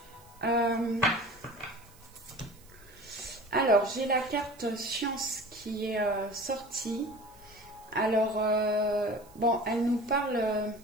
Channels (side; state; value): right; noise; hiss, 26 dB below the sound